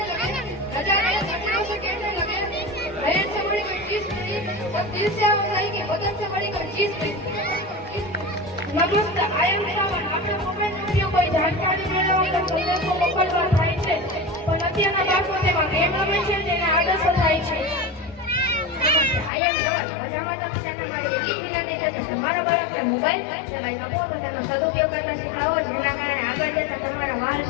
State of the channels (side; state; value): right; drops out; at 19.3 s